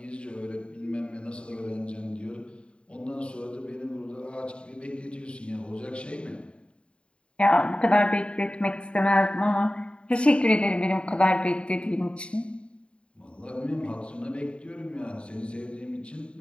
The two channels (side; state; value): right; late; 0.056 ms